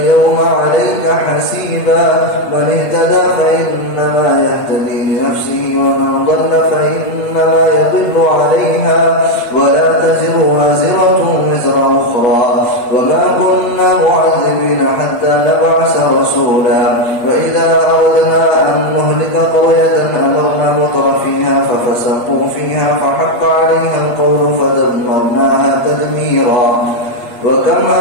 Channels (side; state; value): right; late; 8.5 ms